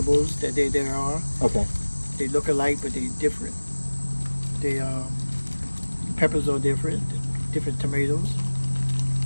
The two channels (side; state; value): both; inverted; correlation -1.00